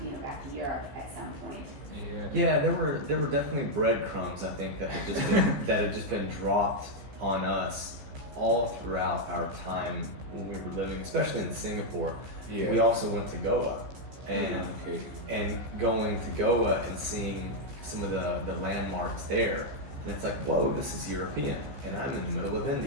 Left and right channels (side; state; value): left; late; 14 ms